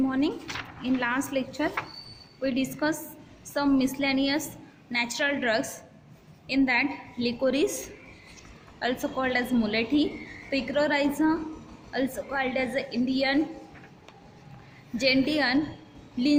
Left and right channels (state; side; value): identical; both; correlation 1.00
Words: In last lecture, we discussed some miscellaneous natural drugs. In that, licorice, also called as mulethi, picrorhiza, also called as Indian gentian,